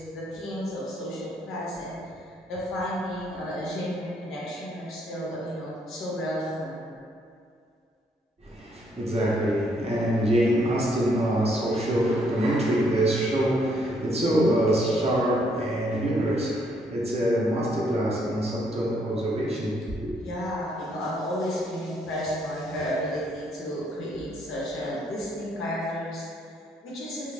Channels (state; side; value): normal; both; correlation 0.70